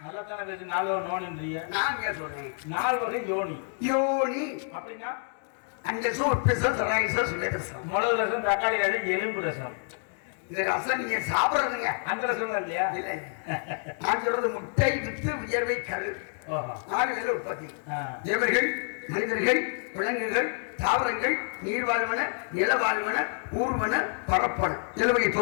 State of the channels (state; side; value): silent; right; 59 dB below the other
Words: நல்லா தானே பேசி 4 நோனின்றீங்க. நான் சொல்றேன் 4 வகை யோனி. யோனி அப்படின்னா அந்த ரசம், மிளகு ரசம், தக்காளி ரசம், எலும்பு ரசம். இந்த ரசம் நீங்க சாப்பிடுறதுங்க. அந்த ரசம் தான் இல்லையா? இல்ல, நான் சொல்றது முட்டை வித்து வியர்வை கரு. 6 பேர் உற்பத்தி. தேவர்கள், மனிதர்கள், விலங்குகள், தாவரங்கள், நீர்வாழ்வன, நிலவாழ்வன, ஊர்வன, பரப்பன, இலவகை